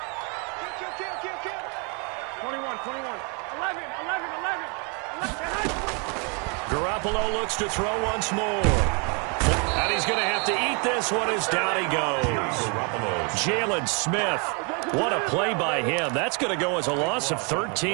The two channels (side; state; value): left; quieter; 35.3 dB